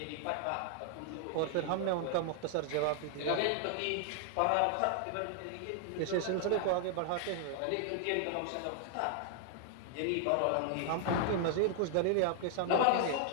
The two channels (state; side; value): different; both; correlation 0.00